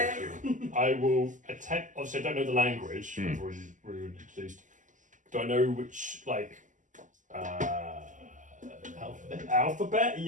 you. I will attempt. Obviously, I don't know the language. Hmm. We've already introduced. Do I know which alphabet?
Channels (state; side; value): late; left; 0.37 ms